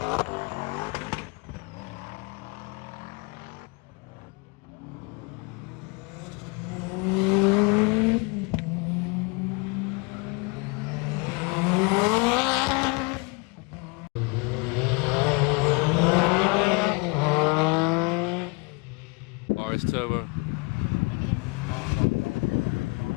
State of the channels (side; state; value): right; quieter; 30.3 dB